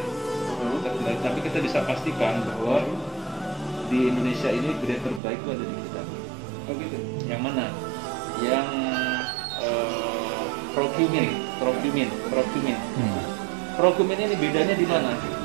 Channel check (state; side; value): drops out; left; at 5.2 s